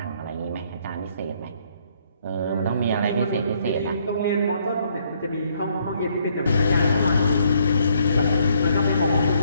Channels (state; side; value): inverted; both; correlation -0.69